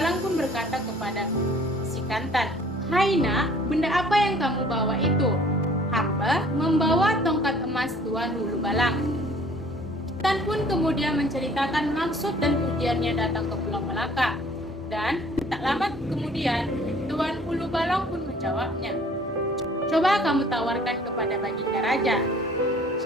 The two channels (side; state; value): both; normal; correlation 0.54